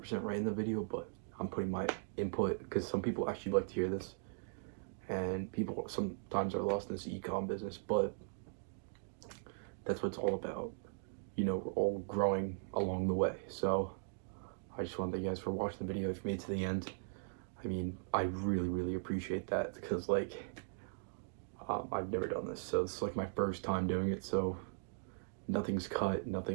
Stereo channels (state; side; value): silent; left; digital silence